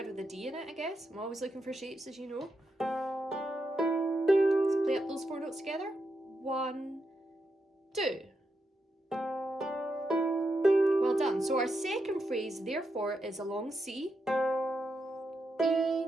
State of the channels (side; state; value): both; normal; correlation 0.84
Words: with a D in it, I guess. I'm always looking for shapes, as you know. Let's play up those 4 notes together. 1, 2. Well done. So our second phrase, therefore, is a long C. E,